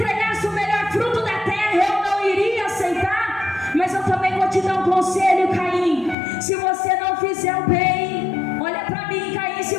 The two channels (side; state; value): right; drops out; at 6.2 s